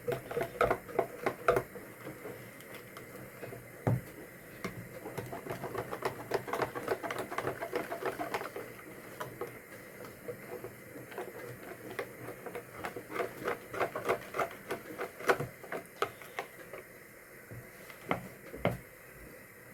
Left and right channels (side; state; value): both; identical; correlation 1.00